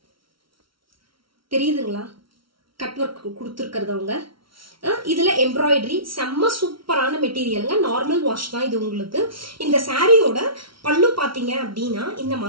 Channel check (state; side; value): late; left; 0.74 ms